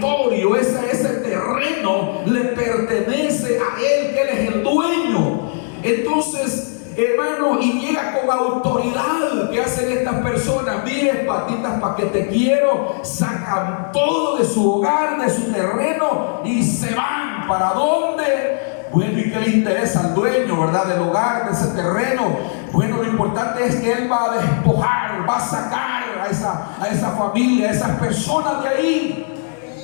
ese terreno le pertenece a él, que él es el dueño. Entonces, hermano, y llega con autoridad. ¿Qué hacen estas personas? Mire, patitas, para que te quiero. Sacan todo de su hogar, de su terreno, y se van. ¿Para dónde? Bueno, ¿y qué le interesa al dueño, verdad, del hogar, de ese terreno? Bueno, lo importante es que él va a despojar, va a sacar a esa familia, a esas personas de ahí.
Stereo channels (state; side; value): silent; right; 67 dB below the other